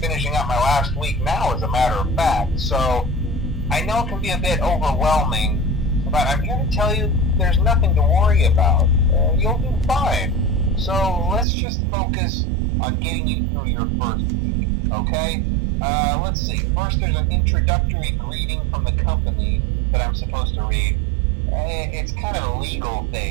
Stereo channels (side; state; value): left; drops out; at 11.5 s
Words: up my last week now, as a matter of fact, so I know it can be a bit overwhelming, but I'm here to tell you there's nothing to worry about. You'll do fine. So let's just focus on getting you through your first week, okay? Let's see. First, there's an introductory greeting from the company that I'm supposed to read. It's kind of a legal